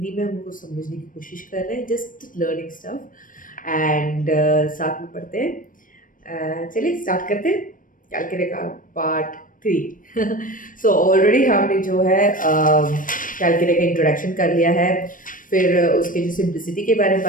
में हम उनको समझने की कोशिश कर रहे हैं, जस्ट लर्निंग स्टफ एंड साथ में पढ़ते हैं। चलिए स्टार्ट करते हैं कैलकुलेटर का पार्ट 3। सो ऑलरेडी हमने जो है कैलकुलेटर का इंट्रोडक्शन कर लिया है, फिर उसके जो सिंप्लिसिटी के बारे में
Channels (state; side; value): late; right; 0.39 ms